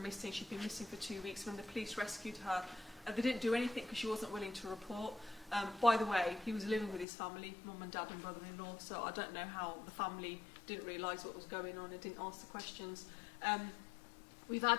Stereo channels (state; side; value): drops out; right; at 7.1 s